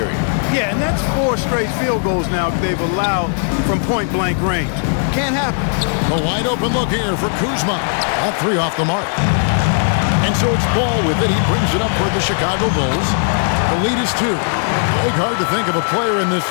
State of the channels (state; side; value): silent; right; digital silence